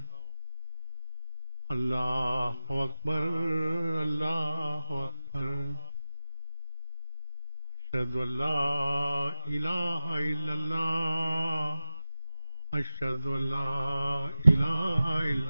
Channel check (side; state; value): both; inverted; correlation -0.98